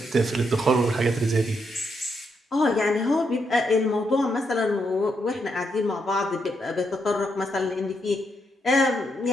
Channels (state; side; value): normal; both; correlation 0.79